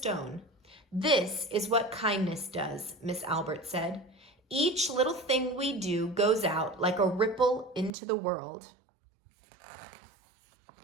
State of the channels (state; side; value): drops out; left; at 7.9 s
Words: "This is what kindness does," Miss Albert said. "Each little thing we do goes out like a ripple into the world."